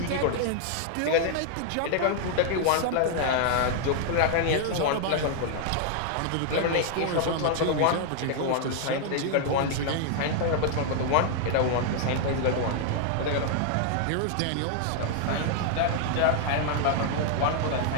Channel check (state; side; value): different; both; correlation 0.00